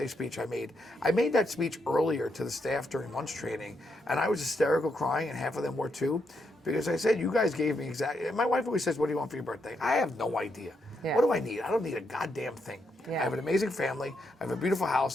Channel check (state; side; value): normal; both; correlation 0.80